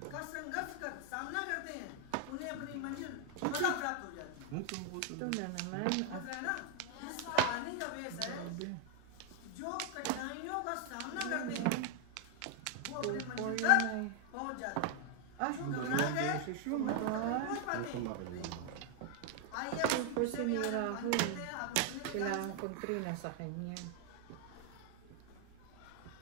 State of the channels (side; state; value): both; different; correlation 0.00